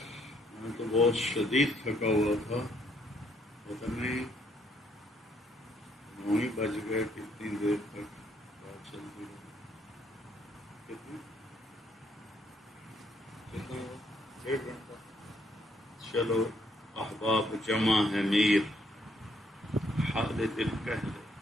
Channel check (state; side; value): normal; both; correlation 0.70